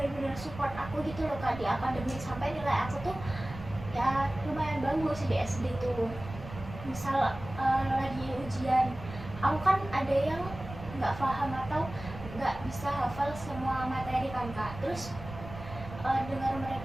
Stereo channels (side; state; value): right; noise; rumble, 12 dB below the sound